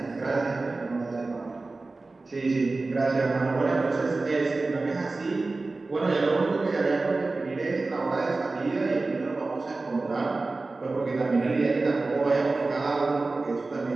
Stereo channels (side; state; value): left; quieter; 3.5 dB